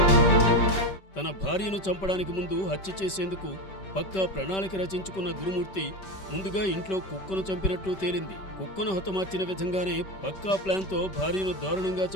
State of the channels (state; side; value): late; right; 5.2 ms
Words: తన భార్యను చంపడానికి ముందు హత్య చేసేందుకు పక్కా ప్రణాళిక రచించుకున్న గురుమూర్తి ముందుగా ఇంట్లో కుక్కను చంపినట్లు తేలింది. కుక్కను హతమార్చిన విధంగానే పక్కా ప్లాన్తో భార్యను దారుణంగా